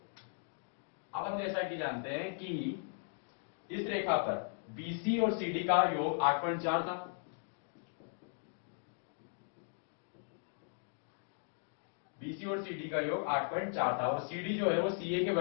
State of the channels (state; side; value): silent; right; digital silence